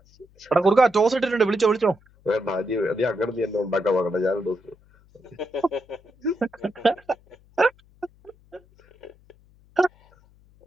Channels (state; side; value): noise; left; hum, 30 dB below the sound